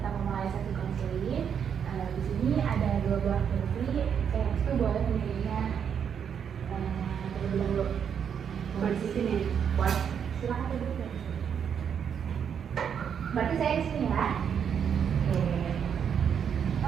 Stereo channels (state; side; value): quieter; left; 7.8 dB